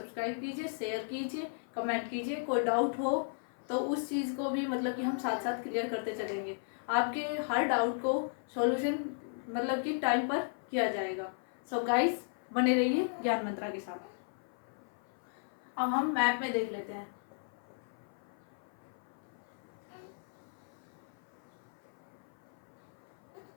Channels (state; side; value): silent; right; 54 dB below the other